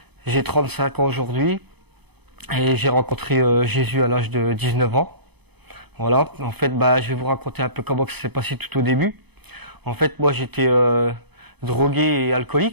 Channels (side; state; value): left; late; 0.98 ms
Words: j'ai 35 ans aujourd'hui et j'ai rencontré Jésus à l'âge de 19 ans. Voilà, en fait, je vais vous raconter un peu comment ça s'est passé tout au début. En fait, moi, j'étais drogué et